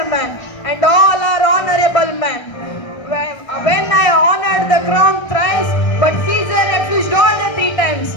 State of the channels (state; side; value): late; right; 1.3 ms